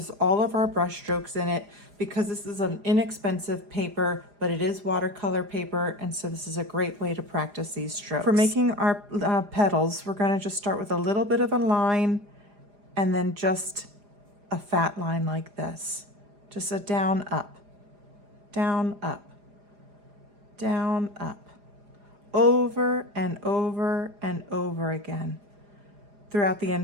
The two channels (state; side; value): late; left; 4.9 ms